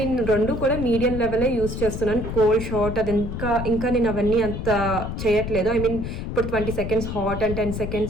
నేను రెండు కూడా మీడియం లెవెలే యూస్ చేస్తున్నాను. కోల్డ్ షార్ట్ అది ఇంకా నేను అవన్నీ అంత చేయట్లేదు. ఐ మీన్ ఇప్పుడు 20 seconds hot and 10 seconds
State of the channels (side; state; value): left; noise; rumble, 5 dB below the sound